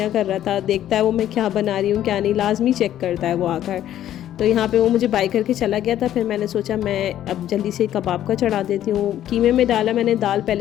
कर रहा था, देखता है वो मैं क्या बना रही हूँ क्या नहीं, लाजमी चेक करता है वो आकर। तो यहाँ पे वो मुझे बाय करके चला गया था। फिर मैंने सोचा मैं अब जल्दी से कबाब का चढ़ा देती हूँ। कीमे में डाला मैंने दाल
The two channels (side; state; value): right; quieter; 11.8 dB